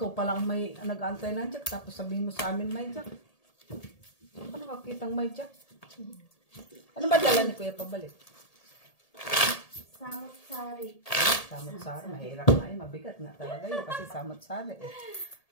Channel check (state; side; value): late; right; 1.8 ms